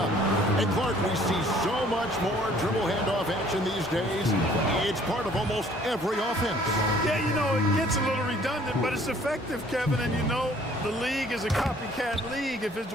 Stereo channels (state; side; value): normal; both; correlation 0.57